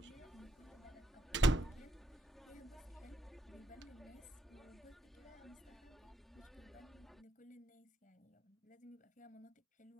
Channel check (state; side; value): normal; both; correlation 0.77